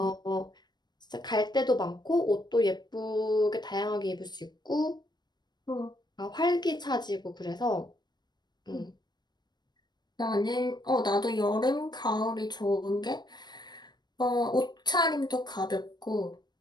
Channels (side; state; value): right; late; 0.21 ms